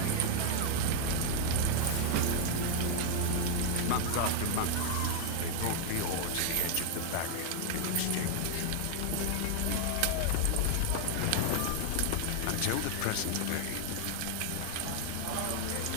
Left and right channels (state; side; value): different; both; correlation 0.00